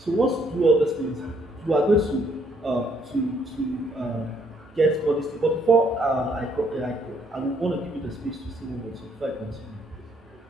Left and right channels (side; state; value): both; normal; correlation 0.68